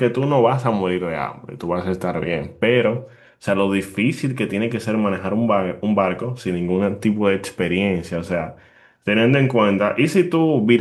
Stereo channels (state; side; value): identical; both; correlation 1.00